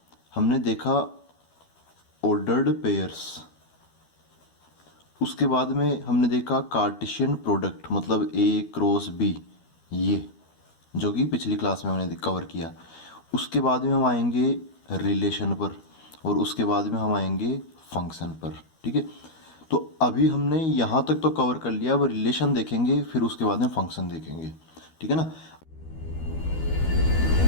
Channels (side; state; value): right; late; 12 ms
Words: हमने देखा ऑर्डर्ड पेयर्स, उसके बाद में हमने देखा कार्टेशियन प्रोडक्ट मतलब ए क्रॉस बी, ये जो कि पिछली क्लास में हमने कवर किया। उसके बाद में हम आएंगे रिलेशन पर, और उसके बाद में हम आएंगे फंक्शन पर। ठीक है, तो अभी हमने यहाँ तक तो कवर कर लिया। अब रिलेशन देखेंगे, फिर उसके बाद में फंक्शन देखेंगे। ठीक है ना।